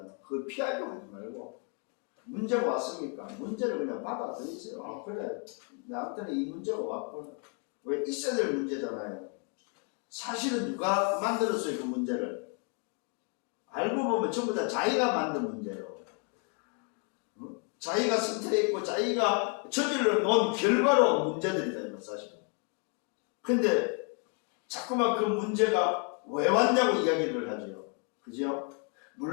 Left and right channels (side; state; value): right; quieter; 38.2 dB